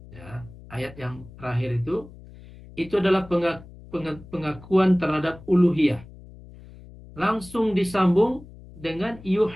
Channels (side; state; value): left; noise; hum, 19 dB below the sound